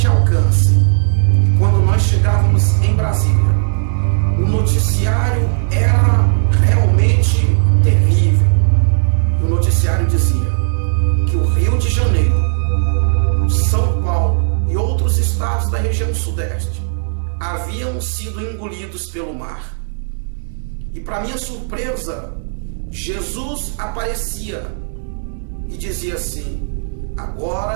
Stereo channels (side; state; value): left; silent; digital silence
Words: alcance. E quando nós chegávamos em Brasília, o noticiário era realmente terrível. E o noticiário dizia que o Rio de Janeiro, São Paulo e outros estados da região sudeste haviam sido engolidos pelo mar. E para minha surpresa, Jesus aparecia e dizia assim: